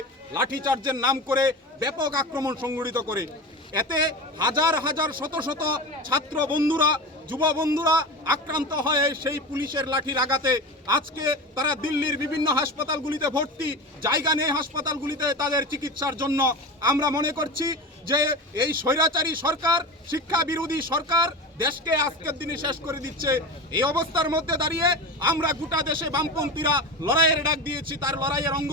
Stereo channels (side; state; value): both; normal; correlation 0.27